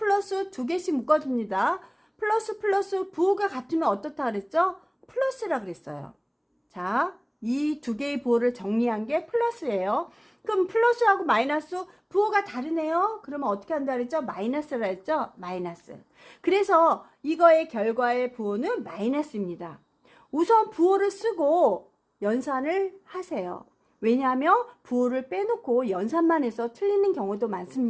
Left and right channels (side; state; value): both; identical; correlation 1.00